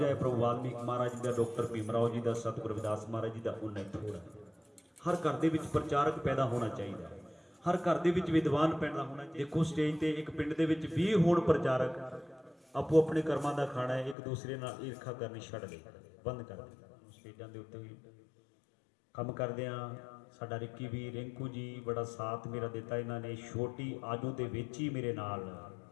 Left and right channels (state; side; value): drops out; right; at 14.2 s